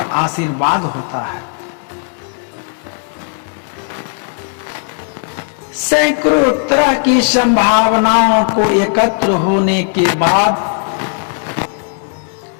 आशीर्वाद होता है। सैकड़ों तरह की संभावनाओं को एकत्र होने के बाद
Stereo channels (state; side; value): silent; right; 69 dB below the other